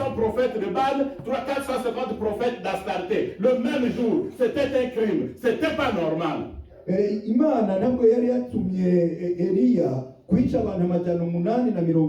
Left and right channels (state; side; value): identical; both; correlation 1.00